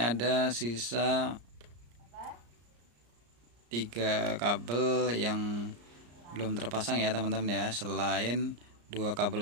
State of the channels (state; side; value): late; left; 34 ms